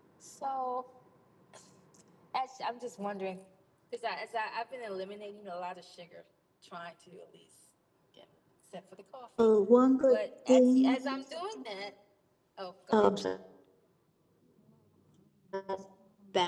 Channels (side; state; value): both; identical; correlation 1.00